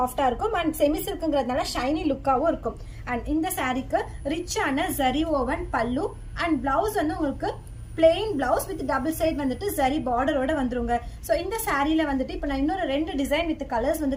இருக்கும் அண்ட் செமி சில்க்குங்கிறதுனால ஷைனி லுக்காவும் இருக்கும். அண்ட் இந்த சாரிக்கு ரிச்சான ஜரி ஓவன் பல்லு அண்ட் பிளவுஸ் வந்து உங்களுக்கு plain blouse with double side வந்துட்டு சரி பார்டரோட வந்துருங்க. ஸோ இந்த சாரியில வந்துட்டு இப்போ நான் இன்னொரு 2 டிசைன் வித் கலர்ஸ் வந்து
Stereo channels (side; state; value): both; identical; correlation 1.00